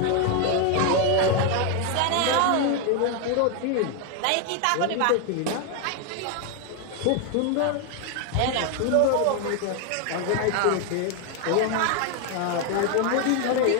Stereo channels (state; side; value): different; both; correlation 0.01